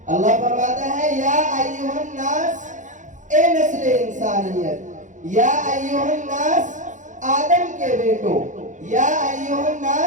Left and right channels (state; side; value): late; left; 0.36 ms